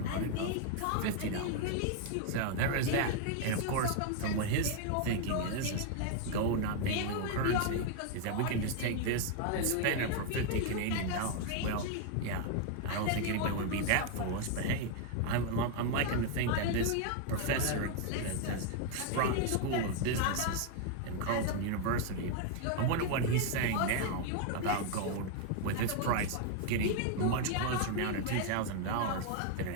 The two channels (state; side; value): different; both; correlation 0.00